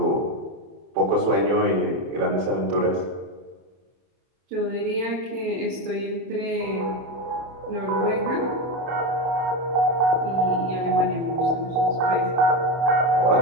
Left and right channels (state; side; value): late; left; 31 ms